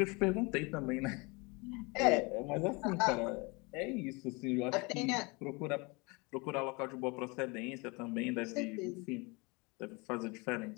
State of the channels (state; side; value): quieter; right; 27.7 dB